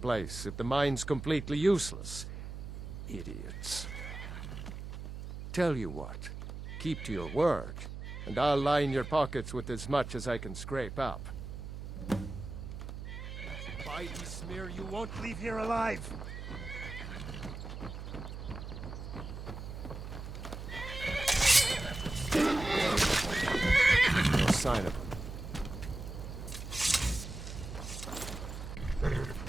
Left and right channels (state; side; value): noise; right; hum, 8 dB below the sound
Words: if the mine's completely useless? Idiots. Tell you what, keep to your word, and I'll line your pockets with as much as I can scrape up. By Ismir, you won't leave here alive! No sign of him.